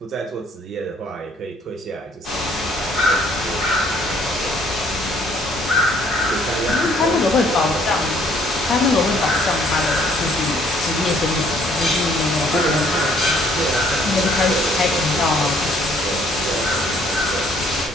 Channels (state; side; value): normal; both; correlation 0.62